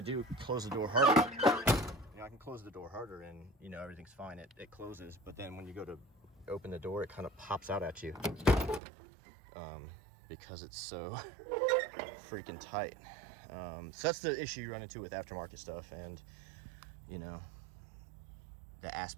do close the door harder, you know, I can close the door harder and, you know, everything's fine, it closes, but then when you go to open the door, it kind of pops out at you because it's so freaking tight. So that's the issue you run into with aftermarket stuff, and you know, the ass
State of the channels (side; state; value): left; drops out; at 8.8 s